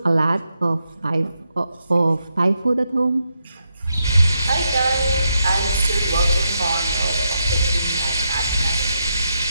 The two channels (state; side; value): inverted; both; correlation -0.82